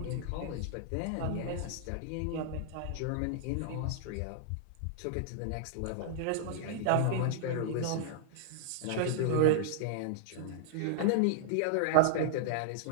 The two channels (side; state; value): both; different; correlation -0.01